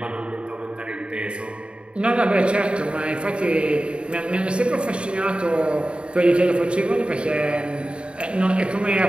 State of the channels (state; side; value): late; left; 0.054 ms